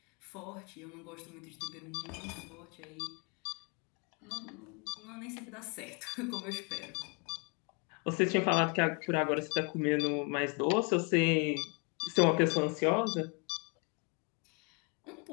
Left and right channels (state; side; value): quieter; right; 34.5 dB